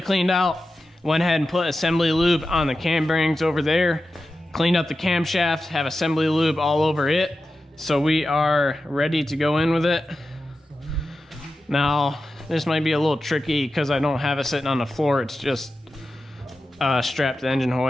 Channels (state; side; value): normal; both; correlation 0.92